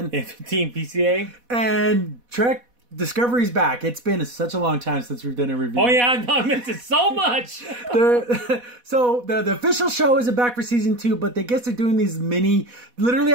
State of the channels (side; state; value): left; late; 4.1 ms